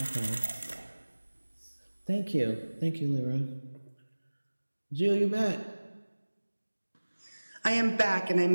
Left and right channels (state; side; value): inverted; both; correlation -1.00